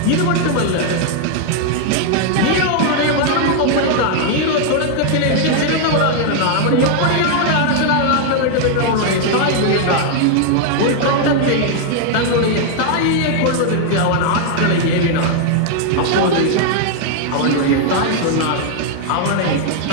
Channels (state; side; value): different; both; correlation 0.00